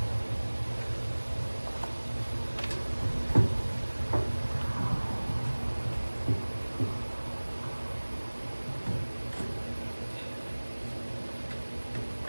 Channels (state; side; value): inverted; both; correlation -1.00